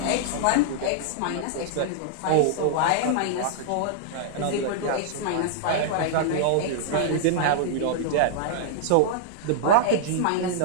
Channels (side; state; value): both; different; correlation -0.01